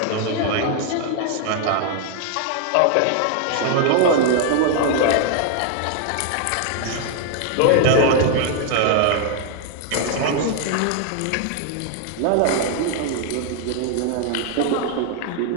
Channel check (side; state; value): both; different; correlation 0.00